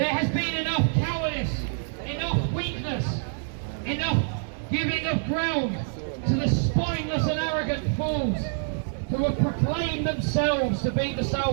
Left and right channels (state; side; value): silent; left; 58 dB below the other